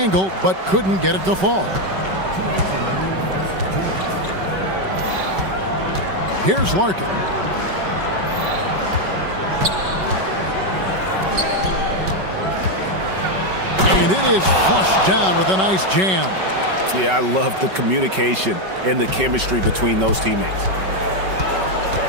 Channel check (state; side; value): late; left; 5.3 ms